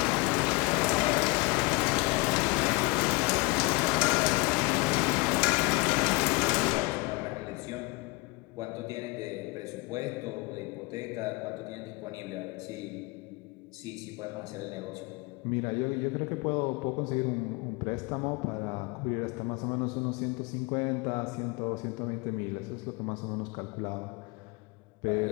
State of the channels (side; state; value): right; quieter; 25.3 dB